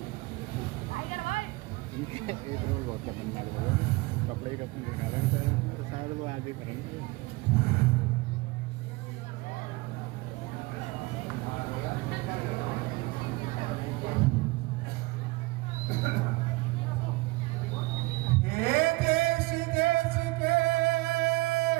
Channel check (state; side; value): quieter; left; 21.9 dB